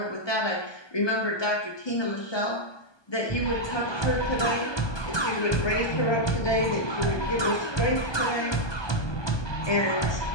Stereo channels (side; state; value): right; late; 1.2 ms